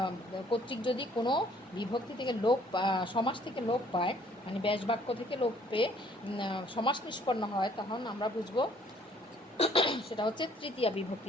যদি কোনো বিভক্তি থেকে সমাস থেকে লোপ পায়, মানে ব্যাস বাক্য থেকে লোপ পেয়ে সমাস নিষ্পন্ন হয়, তখন আমরা বুঝবো সেটা হচ্ছে তৃতীয়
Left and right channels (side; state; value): both; normal; correlation 0.60